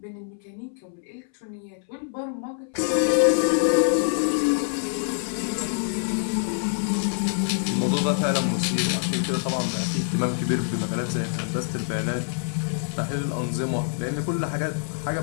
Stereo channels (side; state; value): right; silent; 61 dB below the other